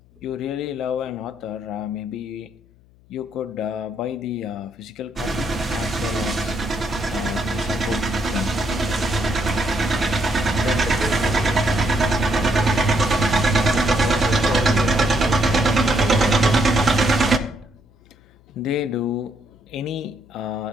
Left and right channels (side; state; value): left; noise; hum, 29 dB below the sound